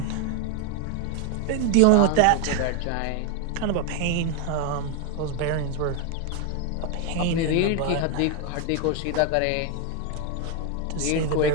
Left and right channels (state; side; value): different; both; correlation 0.01